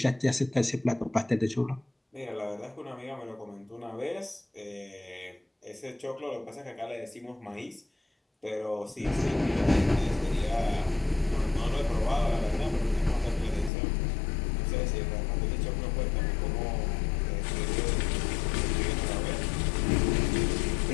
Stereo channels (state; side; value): drops out; right; at 13.7 s